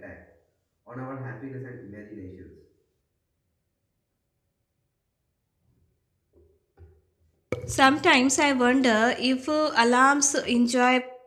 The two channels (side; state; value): both; identical; correlation 1.00